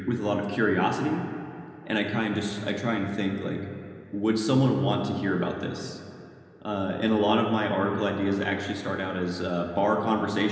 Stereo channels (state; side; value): identical; both; correlation 1.00